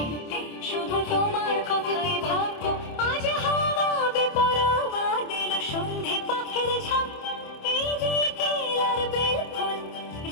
শুধু তোমার কথাই ভাববো। আজ হাওয়া বেপরোয়া দিল সন্ধে পাখির ঝাঁক, এই বিকেল আর বেল ফুল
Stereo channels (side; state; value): right; late; 27 ms